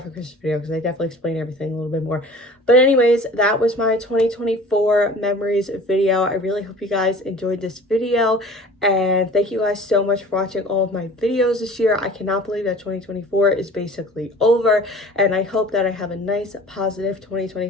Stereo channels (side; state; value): both; normal; correlation 0.45